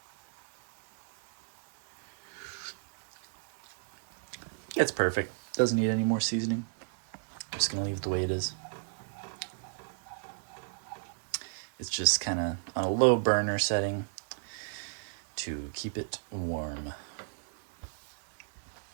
It's perfect. Doesn't need any more seasoning. I'm just gonna leave it the way it is. It's just kind of on a low burner setting to keep it warm.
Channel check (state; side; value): silent; left; 56 dB below the other